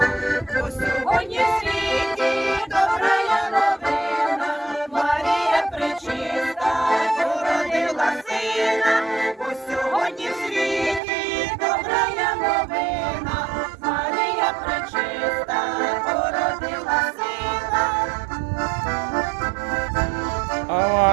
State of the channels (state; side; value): drops out; left; at 11.0 s